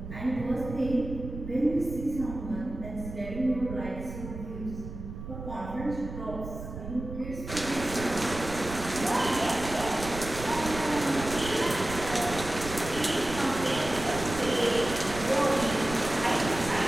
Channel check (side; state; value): right; noise; rumble, 10 dB below the sound